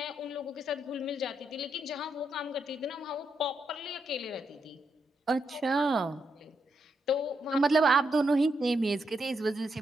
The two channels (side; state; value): both; normal; correlation 0.81